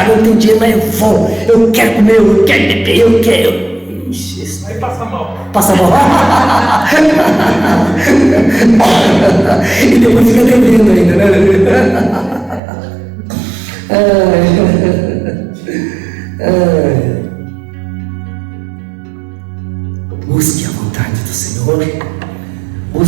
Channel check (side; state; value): left; drops out; at 12.6 s